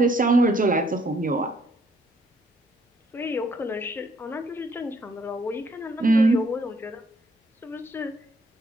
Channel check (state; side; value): normal; both; correlation 0.67